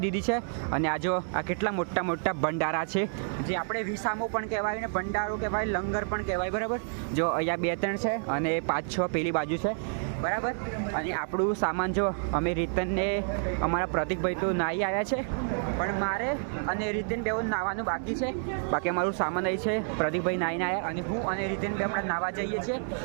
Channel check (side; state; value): left; silent; 58 dB below the other